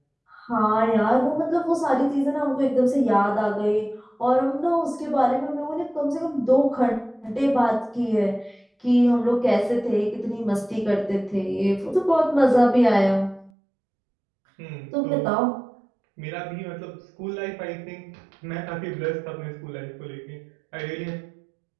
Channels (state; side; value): drops out; left; at 13.5 s